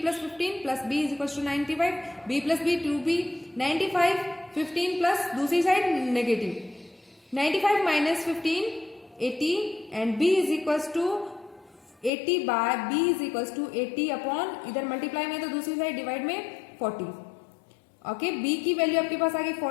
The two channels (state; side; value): drops out; right; at 12.1 s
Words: plus 15 plus B is equals to 95. B plus B 2B 95, 15 plus दूसरी side negative. 95 minus 15 80 and B is equals to 80 by B is equals to 80 upon इधर multiply में तो दूसरी side divide में 40. Okay, B की value आपके पास आ गई